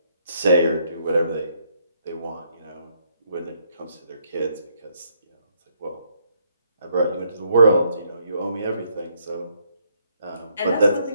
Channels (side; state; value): both; inverted; correlation -0.72